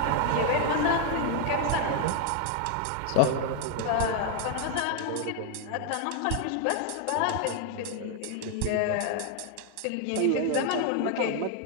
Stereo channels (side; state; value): both; different; correlation 0.00